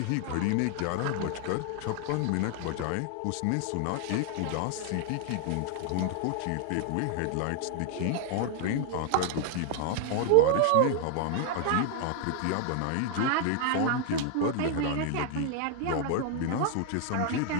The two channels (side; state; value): both; different; correlation 0.00